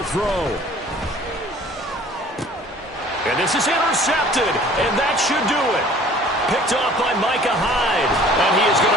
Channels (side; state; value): both; normal; correlation 0.50